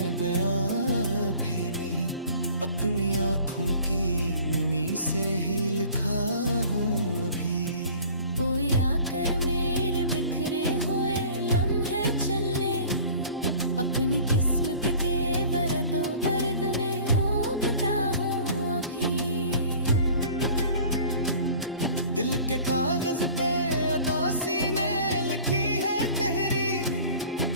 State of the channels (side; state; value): both; inverted; correlation -0.46